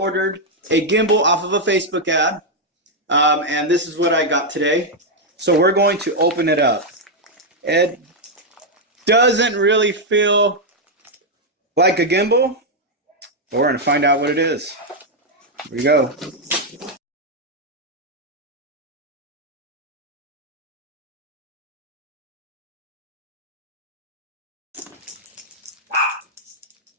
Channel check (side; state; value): both; normal; correlation -0.01